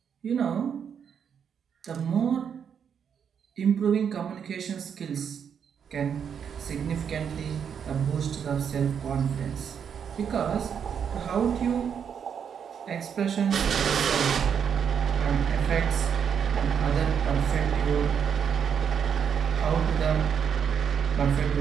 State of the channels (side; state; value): left; quieter; 7.6 dB